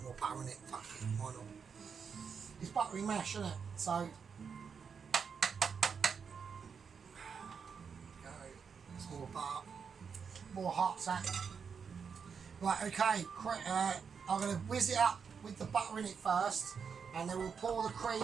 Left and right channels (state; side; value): quieter; left; 6.3 dB